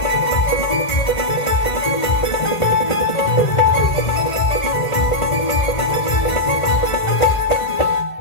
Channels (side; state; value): right; late; 1.5 ms